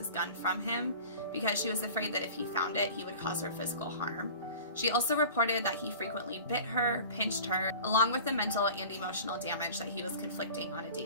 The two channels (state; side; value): inverted; both; correlation -0.40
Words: gun from him because she was afraid that if he found it, he would cause her physical harm. She also reported that he frequently bit her, pinched her, along with the mental and emotional damage that he was conflicting on a